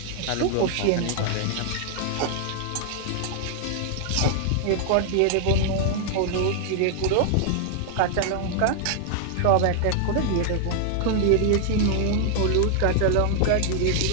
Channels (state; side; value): different; both; correlation 0.00